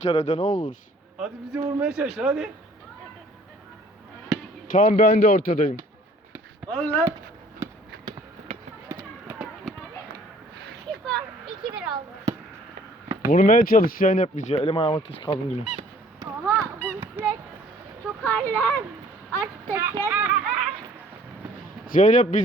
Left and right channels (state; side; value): normal; both; correlation 0.56